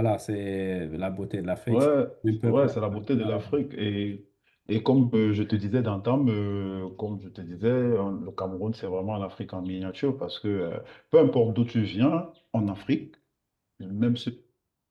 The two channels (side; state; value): both; identical; correlation 1.00